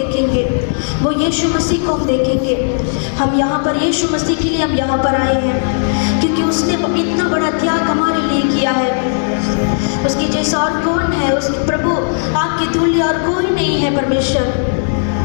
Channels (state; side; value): silent; right; 64 dB below the other